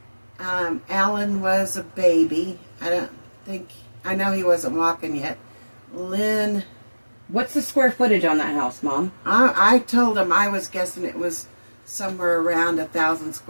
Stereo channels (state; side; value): inverted; both; correlation -1.00